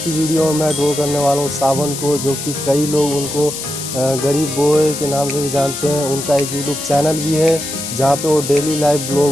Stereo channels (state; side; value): noise; left; hiss, 7 dB below the sound